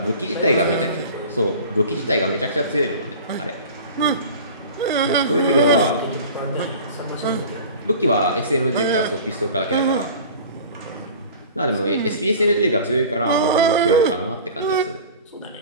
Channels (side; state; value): both; inverted; correlation -0.39